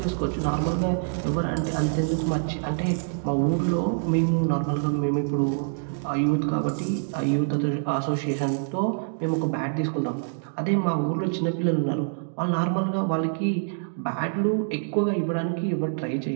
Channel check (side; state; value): left; silent; digital silence